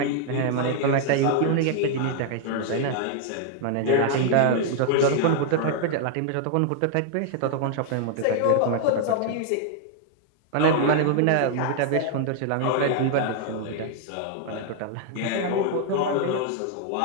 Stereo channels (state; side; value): different; both; correlation 0.00